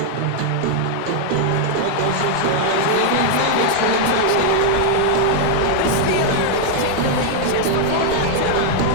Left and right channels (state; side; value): different; both; correlation 0.00